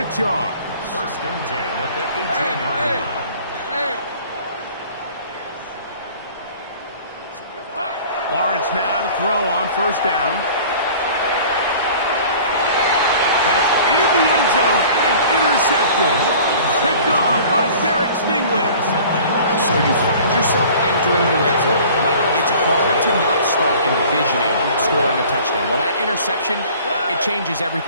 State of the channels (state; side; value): inverted; both; correlation -0.46